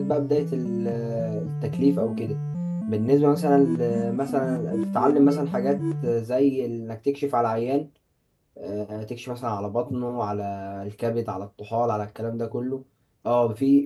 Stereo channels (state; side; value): identical; both; correlation 1.00